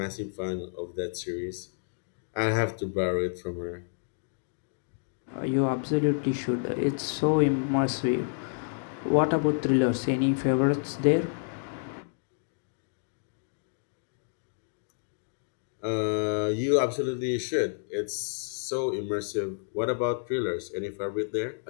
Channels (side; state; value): right; silent; digital silence